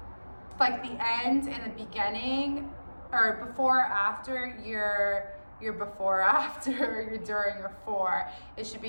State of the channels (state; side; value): inverted; both; correlation -1.00